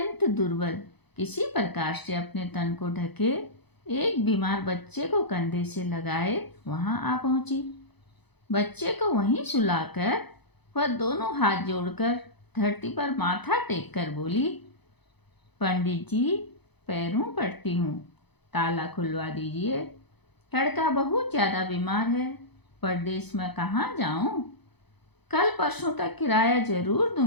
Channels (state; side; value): late; right; 0.99 ms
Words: दुर्बल, किसी प्रकार से अपने तन को ढके एक बीमार बच्चे को कंधे से लगाए वहां आ पहुंची। बच्चे को वहीं सुलाकर वह दोनों हाथ जोड़कर धरती पर माथा टेक कर बोली, पंडित जी, पैरों पड़ती हूँ, ताला खुलवा दीजिए। लड़का बहुत ज़्यादा बीमार है, परदेश में कहाँ जाऊँ? कल परसों तक किराया जरूर